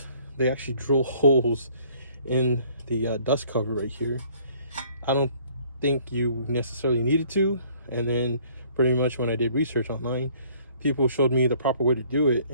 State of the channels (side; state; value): both; inverted; correlation -0.58